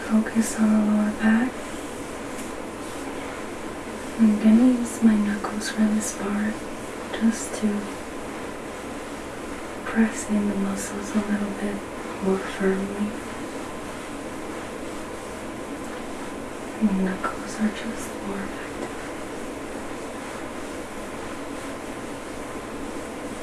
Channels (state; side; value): identical; both; correlation 1.00